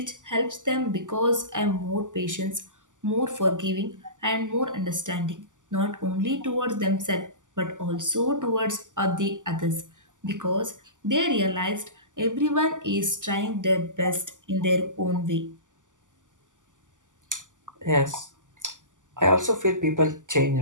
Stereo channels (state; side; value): late; left; 0.87 ms